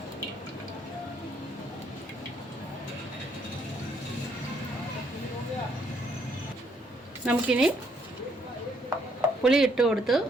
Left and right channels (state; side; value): normal; both; correlation 0.70